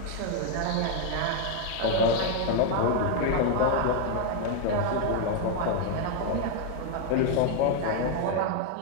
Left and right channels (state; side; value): different; both; correlation 0.01